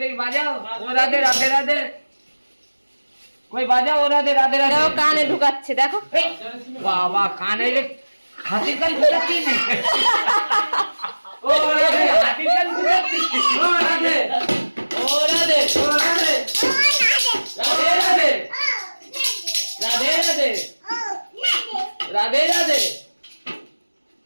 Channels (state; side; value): inverted; both; correlation -1.00